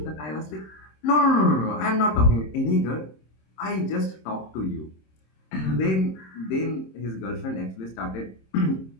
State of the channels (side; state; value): right; late; 26 ms